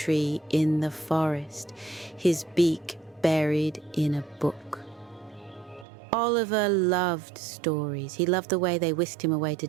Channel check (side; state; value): left; drops out; at 5.9 s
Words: in the forest, his beak buried in a book. Oliver loved stories. He loved the way they whisked him away to